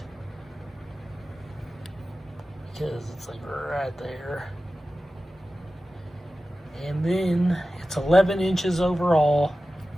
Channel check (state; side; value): normal; both; correlation 0.95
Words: because it's like right there. And then it's 11 inches overall.